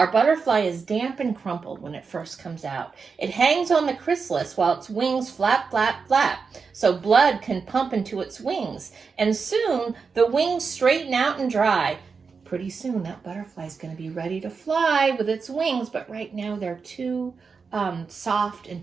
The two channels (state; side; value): quieter; left; 5.2 dB